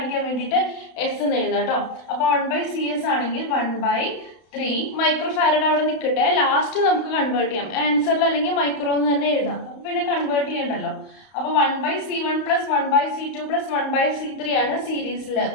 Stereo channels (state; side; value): late; right; 31 ms